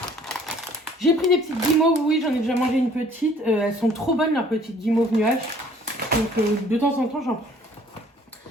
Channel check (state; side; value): normal; both; correlation 0.56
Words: J'ai pris des petites guimauves, oui, j'en ai déjà mangé une petite. Elles sont trop bonnes, leurs petites guimauves nuages. Donc de temps en temps, j'en prends.